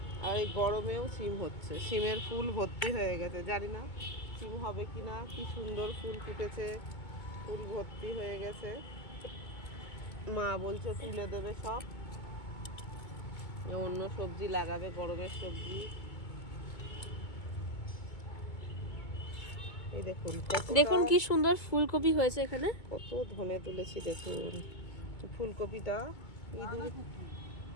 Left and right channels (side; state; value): right; late; 2.2 ms